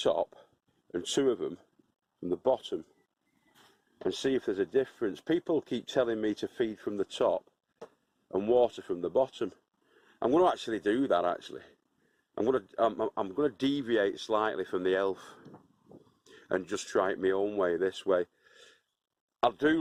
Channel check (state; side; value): identical; both; correlation 1.00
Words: and 2 of them from the bottom and see if there's a difference. People keep telling me to feed from the top and water from the bottom. I'm going to actually do that. I'm going to deviate slightly from the elf and just try it my own way, this way. I